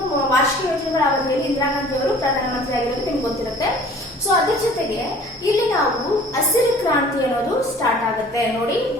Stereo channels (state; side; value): normal; both; correlation 0.49